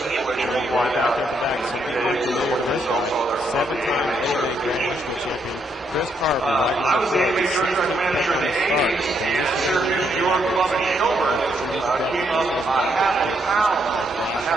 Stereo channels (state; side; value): normal; both; correlation 0.76